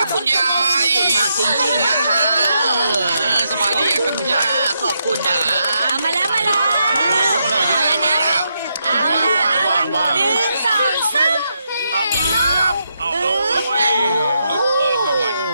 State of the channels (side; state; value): both; inverted; correlation -0.81